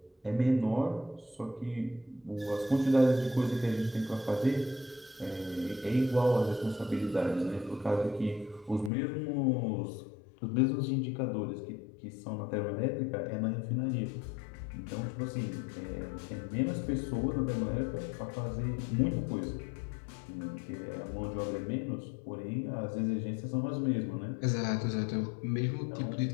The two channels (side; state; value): right; drops out; at 8.9 s